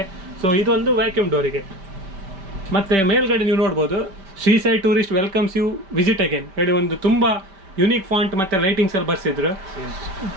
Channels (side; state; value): left; late; 5.1 ms